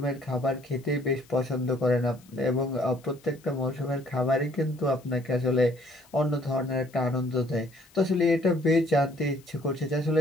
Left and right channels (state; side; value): noise; left; hiss, 28 dB below the sound